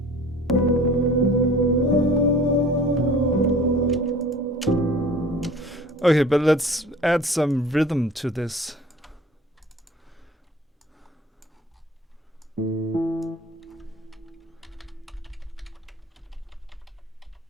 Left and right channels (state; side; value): normal; both; correlation 0.45